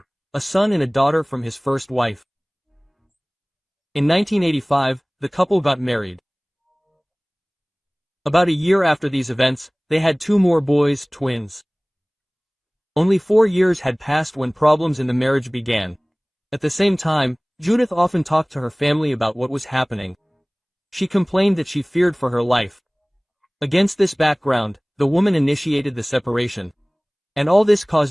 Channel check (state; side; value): identical; both; correlation 1.00